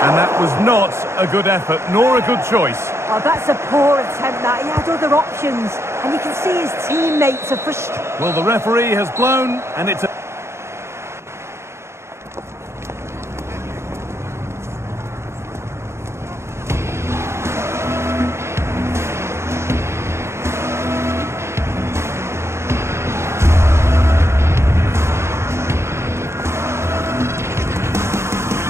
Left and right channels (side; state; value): left; late; 0.13 ms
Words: that was not a good effort, nor a good choice. Oh, that's a poor attempt, that. He had other options, and you can see his teammates are frustrated. Well, the referee has blown, and it's a...